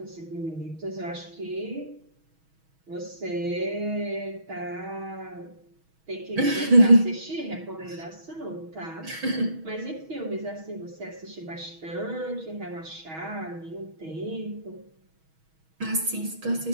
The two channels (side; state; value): left; late; 6.2 ms